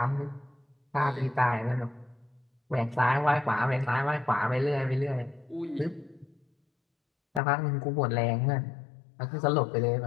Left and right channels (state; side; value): drops out; right; at 7.4 s